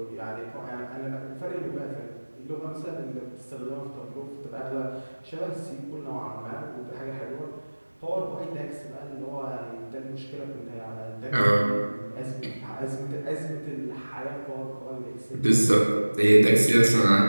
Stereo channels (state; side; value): inverted; both; correlation -1.00